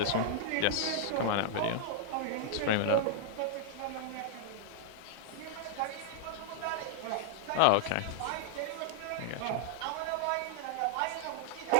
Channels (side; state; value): both; different; correlation -0.01